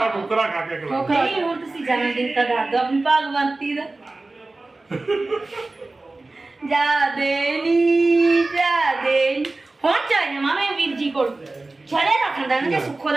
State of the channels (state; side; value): quieter; left; 3.2 dB